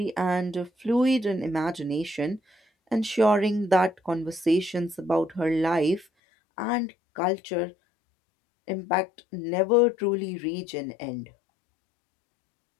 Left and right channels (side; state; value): right; drops out; at 6.1 s